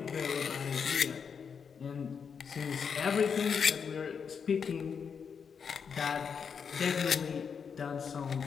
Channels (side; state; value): right; quieter; 6.4 dB